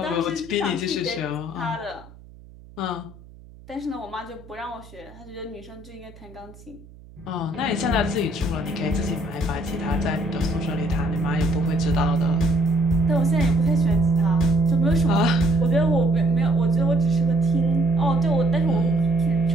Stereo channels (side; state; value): right; noise; hum, 21 dB below the sound